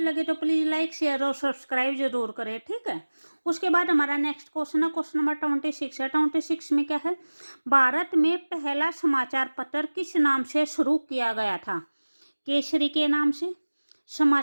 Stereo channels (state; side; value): inverted; both; correlation -1.00